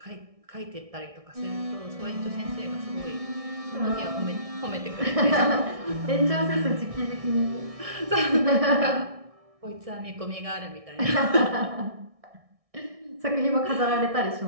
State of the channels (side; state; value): left; late; 1.6 ms